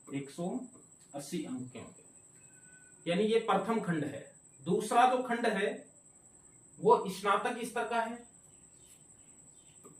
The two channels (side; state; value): both; identical; correlation 1.00